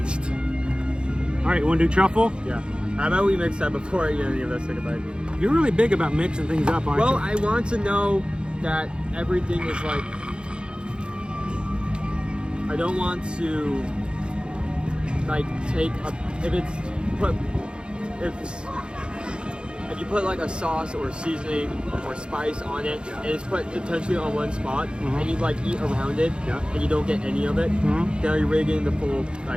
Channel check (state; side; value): late; left; 0.053 ms